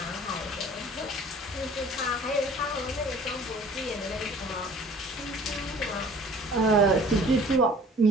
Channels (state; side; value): normal; both; correlation 0.49